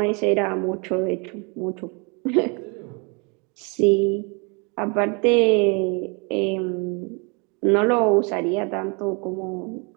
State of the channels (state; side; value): quieter; left; 32.5 dB